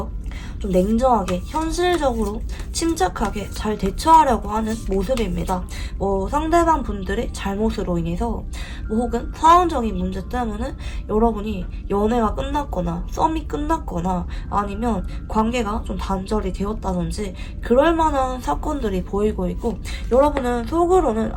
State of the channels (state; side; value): identical; both; correlation 1.00